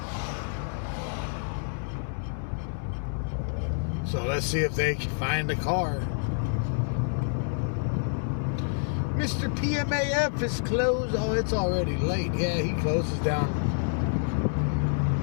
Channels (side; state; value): right; silent; 59 dB below the other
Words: So let's see if they can find the car. Mr. PMAF is closed. Oh, it's already late. Yeah, he closes down.